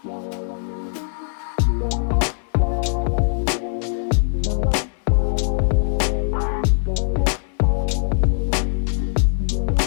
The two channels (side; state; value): right; silent; digital silence